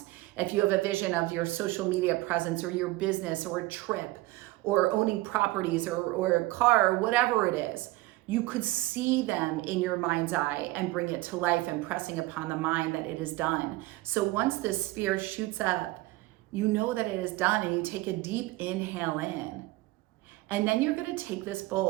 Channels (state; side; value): quieter; left; 19.6 dB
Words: if you have a vision of your social media presence or your business or a trip or owning properties or a car or whatever it is, you could see them in your mind's eye and bring it to life, impressing upon the mind that it is done. So once this sphere shoots up, you know that it is done, and you take a deep inhale in. And then you're going to take this